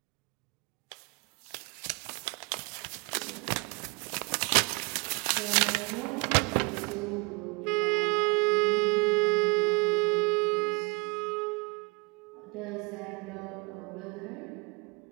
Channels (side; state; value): left; quieter; 30.0 dB